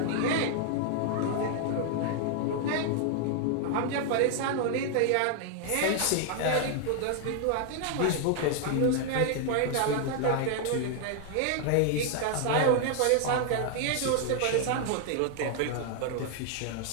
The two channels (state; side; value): different; both; correlation 0.00